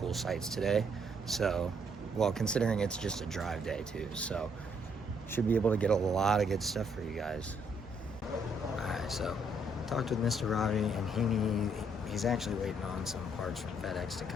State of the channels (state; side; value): normal; both; correlation 0.70